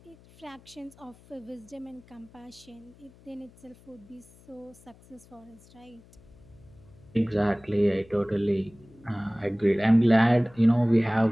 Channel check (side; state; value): left; noise; hum, 25 dB below the sound